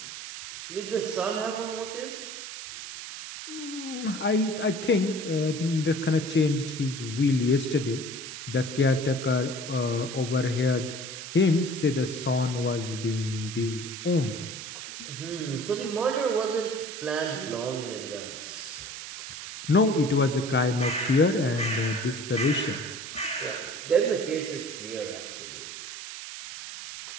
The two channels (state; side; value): noise; right; hiss, 9 dB below the sound